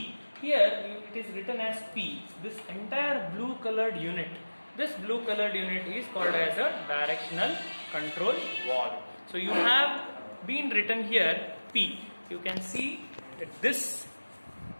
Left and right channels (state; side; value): inverted; both; correlation -1.00